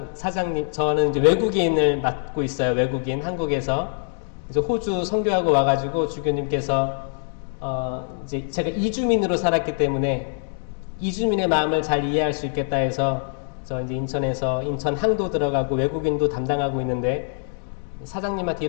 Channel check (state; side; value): silent; right; digital silence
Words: 사장님, 저는 이제 외국인을 맡고 있어요. 외국인, 한국에서. 이제 호주 선교하고 와가지고 주교님께서, 이제 제가 이주민으로 살았기 때문에 이주민의 마음을 잘 이해할 수 있겠다 해서 저 이제 인천에서 인천 항도 들어가고 외국인도 담당하고 있는데 사장님한테